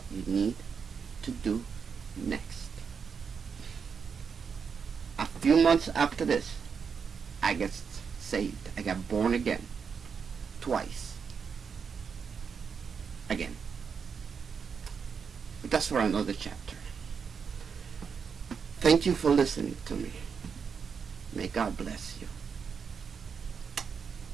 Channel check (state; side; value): quieter; left; 6.2 dB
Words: you need to do next. A few months after this, I got saved. I got born again. Twice. Again. But that's for another chapter. Thank you for listening to me. May God bless you.